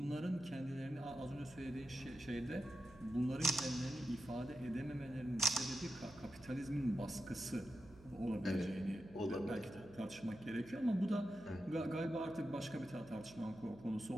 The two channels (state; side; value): noise; right; hum, 20 dB below the sound